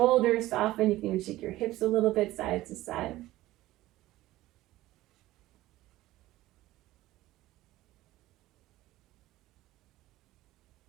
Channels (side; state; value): left; quieter; 16.4 dB